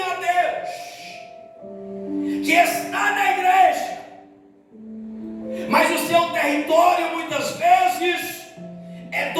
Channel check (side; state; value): both; identical; correlation 1.00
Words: a Deus, que está na igreja, mas o seu território muitas vezes é